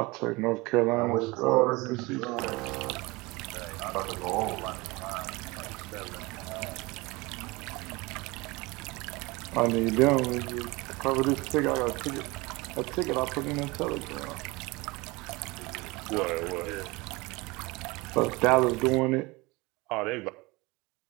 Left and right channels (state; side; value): quieter; left; 23.8 dB